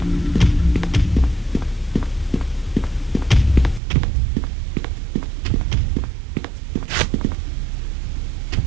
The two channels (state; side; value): drops out; left; at 3.8 s